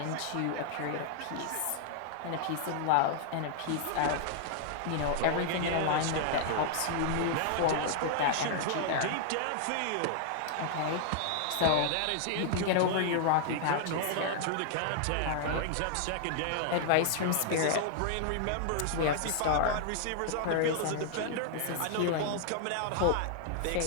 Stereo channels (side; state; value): both; different; correlation 0.00